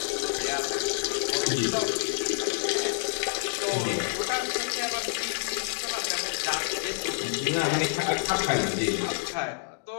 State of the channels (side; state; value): right; silent; digital silence